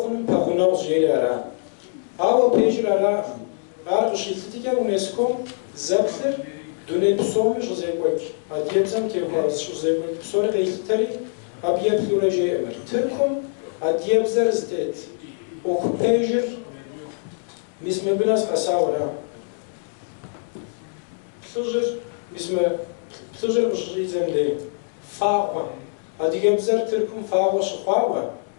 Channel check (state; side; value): silent; right; digital silence